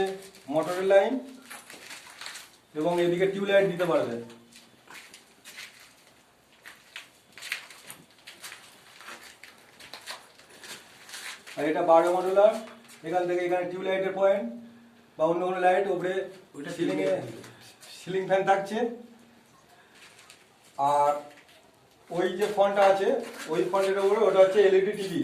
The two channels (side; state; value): both; identical; correlation 1.00